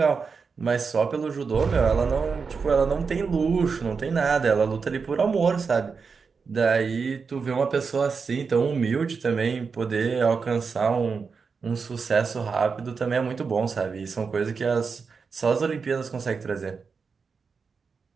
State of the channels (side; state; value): left; quieter; 5.3 dB